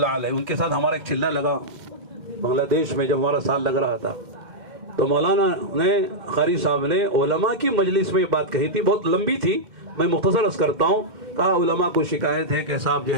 علیہ, ان کے ساتھ ہمارا ایک چلنا لگا بنگلہ دیش میں جب ہمارا سال لگ رہا تھا. تو مولانا نے, قاری صاحب نے علماء کی مجلس میں یہ بات کہی تھی, بہت لمبی تھی, میں مختصر عرض کرتا ہوں. کہا علماء کو شکایت ہے کہ صاحب جو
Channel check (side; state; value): left; late; 2.1 ms